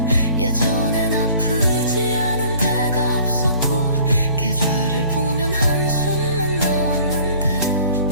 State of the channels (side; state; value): both; inverted; correlation -0.52